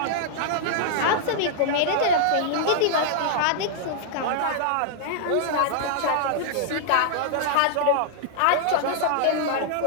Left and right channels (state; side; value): different; both; correlation -0.01